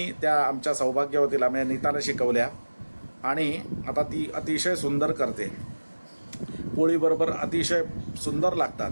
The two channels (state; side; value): inverted; both; correlation -1.00